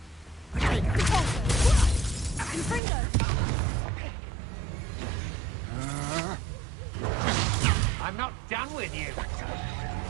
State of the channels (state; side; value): drops out; left; at 2.8 s